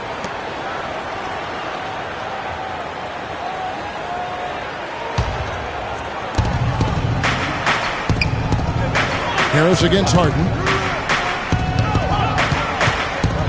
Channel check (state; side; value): identical; both; correlation 1.00